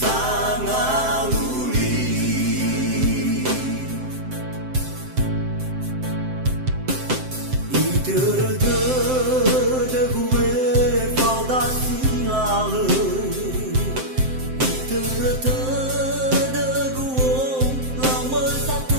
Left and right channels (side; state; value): left; late; 7.7 ms